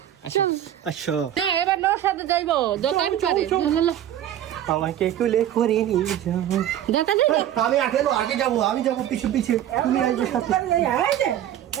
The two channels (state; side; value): quieter; left; 11.4 dB